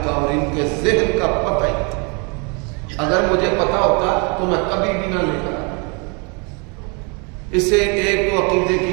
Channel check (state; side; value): quieter; left; 33.2 dB